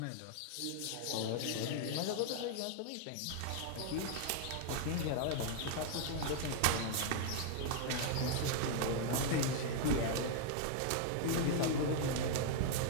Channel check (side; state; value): both; different; correlation 0.00